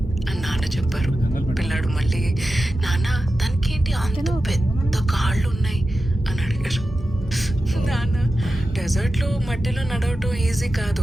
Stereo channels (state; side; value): normal; both; correlation 0.92